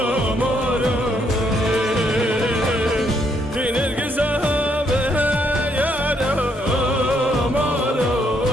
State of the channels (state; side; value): normal; both; correlation 0.73